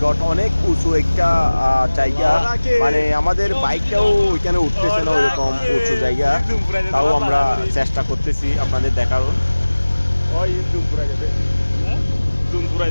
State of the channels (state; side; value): inverted; both; correlation -1.00